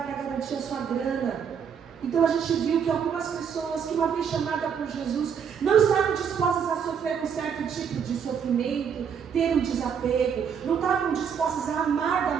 para garantir a sua grana. Então a gente viu que algumas pessoas que uma vez chamadas por Jesus não estavam dispostas a sofrer um certo tipo de sofrimento, ter um desapego, não estavam dispostas a amar da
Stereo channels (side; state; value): left; quieter; 7.3 dB